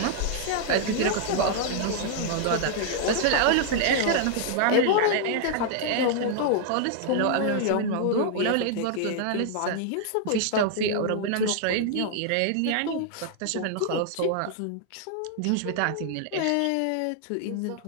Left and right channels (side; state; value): both; different; correlation 0.00